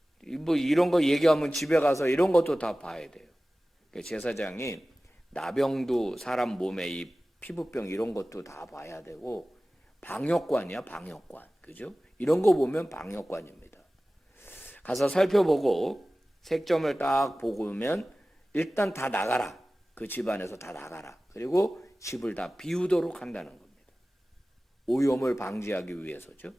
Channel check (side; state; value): both; normal; correlation 0.97